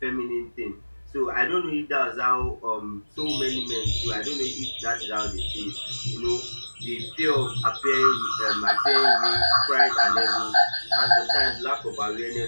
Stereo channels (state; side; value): inverted; both; correlation -1.00